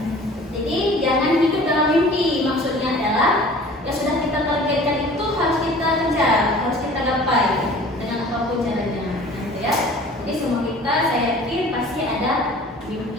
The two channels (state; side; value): normal; both; correlation 0.46